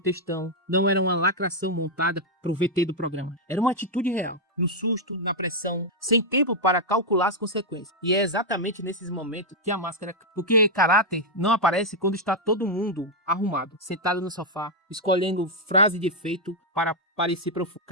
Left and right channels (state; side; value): normal; both; correlation -0.02